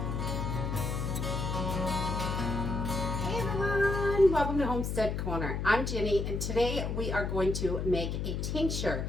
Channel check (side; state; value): left; noise; hum, 2 dB below the sound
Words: everyone, welcome to Homestead Corner. I'm Jenny, and today we are going to make a tincture,